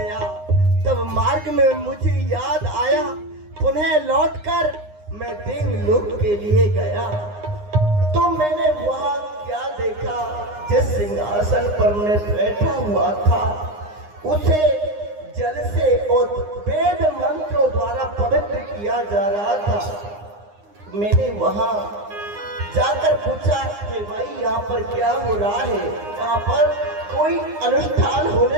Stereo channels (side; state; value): left; late; 9.7 ms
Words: तब मार्ग में मुझे याद आया, पुनः लौटकर मैं देवलोक के लिए गया। तो मैंने वहां क्या देखा, जिस सिंहासन पर मैं बैठा हुआ था उसे जल से और वेद मंत्रों द्वारा पवित्र किया जा रहा था। मैंने वहां जाकर पूछा कि भाई यहाँ पर क्या हो रहा है, यहाँ पर कोई अनुष्ठान